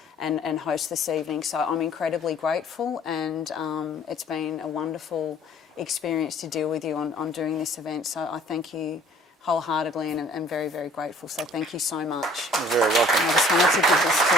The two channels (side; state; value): both; normal; correlation 0.54